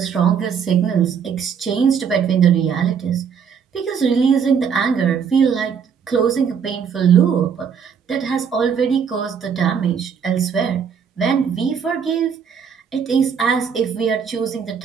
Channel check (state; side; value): quieter; left; 6.9 dB